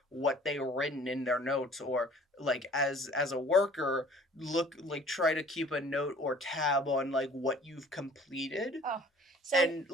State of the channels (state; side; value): normal; both; correlation 0.51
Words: what they written in their notes, or like as a worker, look, like, try to keep a note or tab on like what you've completed, Oh, so and